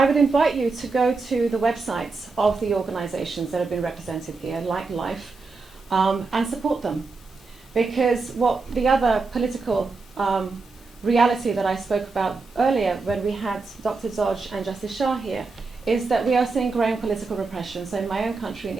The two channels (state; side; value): quieter; left; 4.1 dB